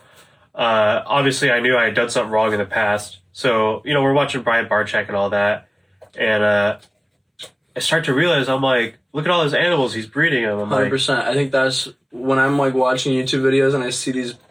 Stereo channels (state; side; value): identical; both; correlation 1.00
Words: Obviously, I knew I had done something wrong in the past. So, we're watching Brian Barczyk and all that. And I start to realize, I'm like, look at all those animals he's breeding them. I'm 100%. like, I think that's when I'm like watching YouTube videos and I see these